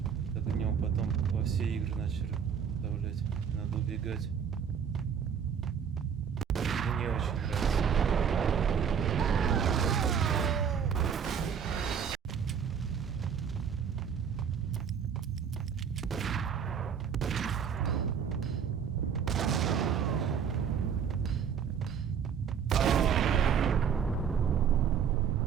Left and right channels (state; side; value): quieter; left; 7.4 dB